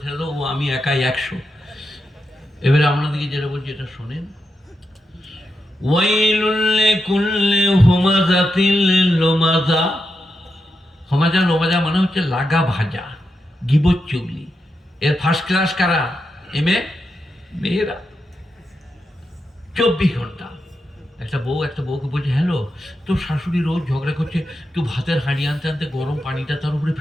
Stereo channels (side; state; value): both; normal; correlation 0.86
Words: ছেড়ে দাও, ও আমি একাই 100। এবারে আপনাদেরকে যেটা বলছি এটা শোনেন। ওয়াইলুল লিকুল্লি হুমাযাতিল লুমাযা। হুমাযা লুমাযা মানে হচ্ছে লাগা ভাজা, গিবত চুগলি। এর ফার্স্ট ক্লাস কারা? এমএ মেয়েরা। 24 ঘন্টা। একটা বউকে বলছে, হ্যালো, তোর শাশুড়ি রোজ ঝগড়া করছে, তুই ভাতের হাঁড়ি আনতে আনতে গরম পানিটা তার উপরে